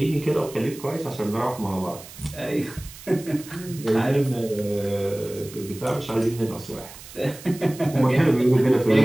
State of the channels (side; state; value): right; noise; hiss, 17 dB below the sound